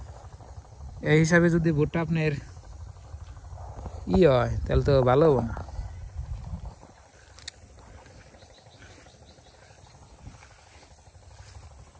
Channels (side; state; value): both; identical; correlation 1.00